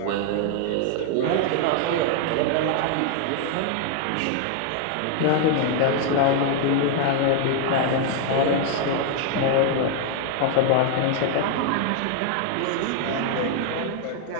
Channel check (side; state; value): both; different; correlation 0.00